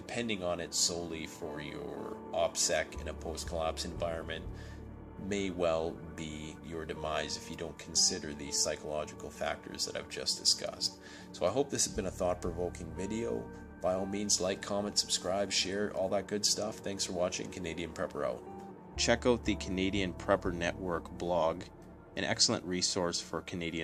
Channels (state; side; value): identical; both; correlation 1.00